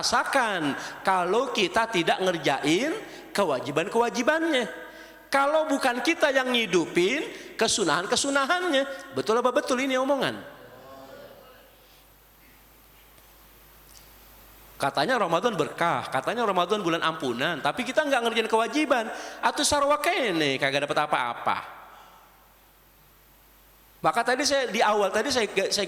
kalau kita tidak ngerjain kewajiban-kewajibannya. Kalau bukan kita yang ngidupin kesunahan-kesunahannya. Betul apa betul ini omongan? Katanya Ramadan berkah, katanya Ramadan bulan ampunan, tapi kita nggak ngerjain kewajiban. Atau sarwa kene kagak dapat apa-apa. Maka tadi saya di awal tadi saya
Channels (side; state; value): both; identical; correlation 1.00